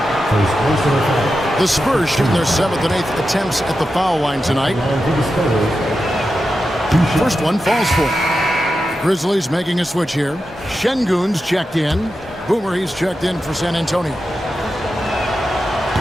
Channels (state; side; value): normal; both; correlation 0.90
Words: The Spurs shooting their 7th and 8th attempts at the foul line tonight. First one falls for. Grizzlies making a switch here. Şengün's checked in. Boomer, he's checked in for San Antonio.